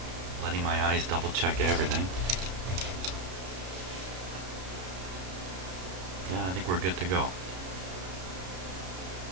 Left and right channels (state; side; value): late; left; 33 ms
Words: letting my eyes double check everything. Yeah, I think we're good to go.